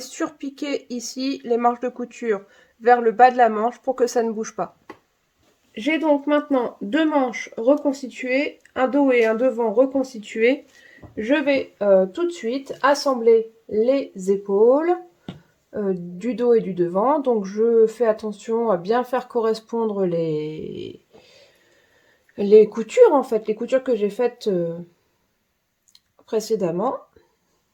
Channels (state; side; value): identical; both; correlation 1.00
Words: surpiquer ici les marges de couture vers le bas de la manche pour que ça ne bouge pas. J'ai donc maintenant 2 manches reconstituées, un dos et un devant reconstitués. Je vais tout de suite assembler les épaules du dos et du devant. Donc je fais attention à bien faire correspondre les coutures en fait, les coutures que j'ai faites précédemment.